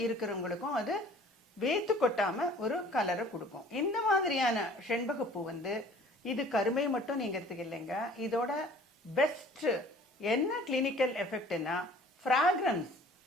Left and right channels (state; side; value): normal; both; correlation 0.51